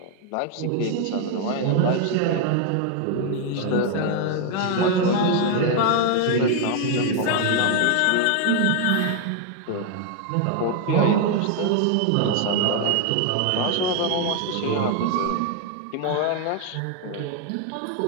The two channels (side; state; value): both; different; correlation 0.00